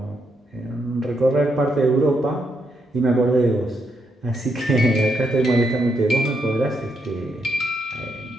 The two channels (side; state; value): both; normal; correlation 0.79